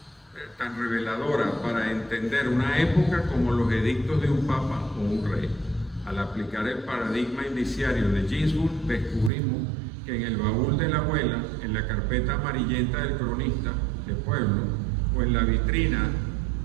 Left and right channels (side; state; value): left; drops out; at 9.3 s